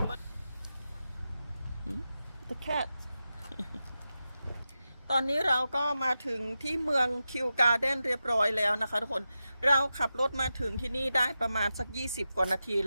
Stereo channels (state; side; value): inverted; both; correlation -0.91